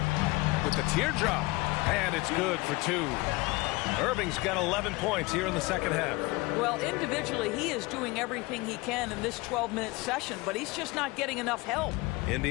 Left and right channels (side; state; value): right; quieter; 22.9 dB